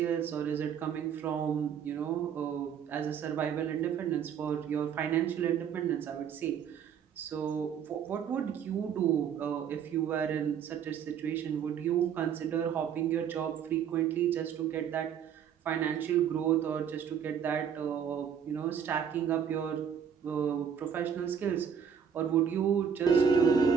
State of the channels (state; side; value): quieter; left; 7.8 dB